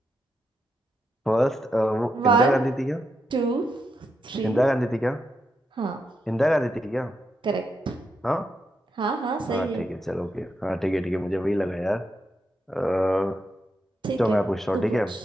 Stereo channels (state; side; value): normal; both; correlation 0.83